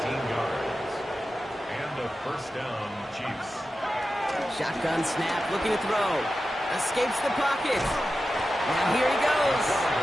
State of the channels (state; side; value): normal; both; correlation 0.92